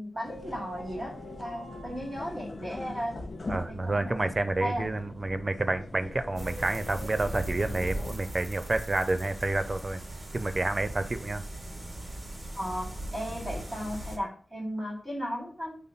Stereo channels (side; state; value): both; normal; correlation 0.96